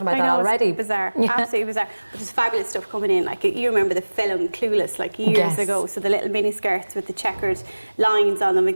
about that already. It's bizarre, absolutely bizarre. But there's fabulous stuff coming in. Like, you remember the film Clueless, like years ago. So the little mini skirts with the checkered lines on them,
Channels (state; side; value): inverted; both; correlation -1.00